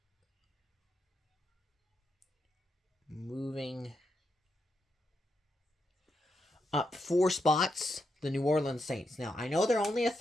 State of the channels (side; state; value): both; normal; correlation 0.83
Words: moving up 4 spots, the New Orleans Saints. Now, I know they're only a